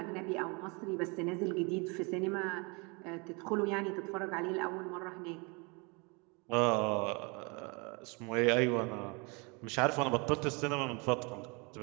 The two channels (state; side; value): quieter; left; 30.4 dB